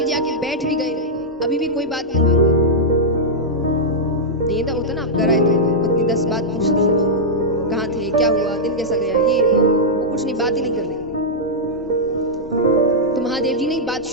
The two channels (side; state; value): both; normal; correlation -0.08